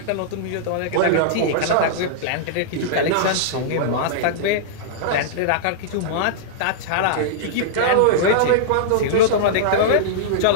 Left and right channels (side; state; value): both; different; correlation -0.02